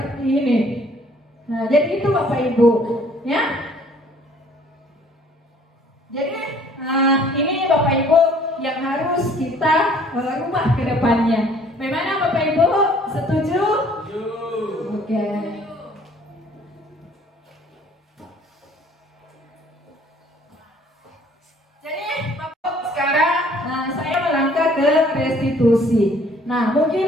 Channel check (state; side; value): normal; both; correlation 0.57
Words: ini. Nah, jadi itu Bapak Ibu, ya. Jadi ini Bapak Ibu yang harus kita rubah ke depannya. Bagaimana Bapak Ibu? Setuju? Oke. Jadi Bapak sekarang saya melangkah ke restitusi. Nah, mungkin